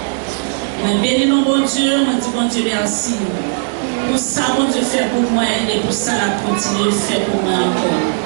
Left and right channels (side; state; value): left; silent; digital silence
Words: Mais bénis mon bon Dieu, moi dis bon Dieu merci. Pour ça, bon Dieu fait pour moi et pour ça, la continue de faire pour moi encore.